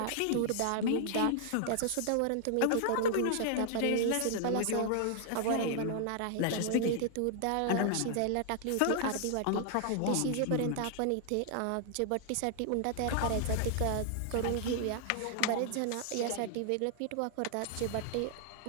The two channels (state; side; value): different; both; correlation 0.00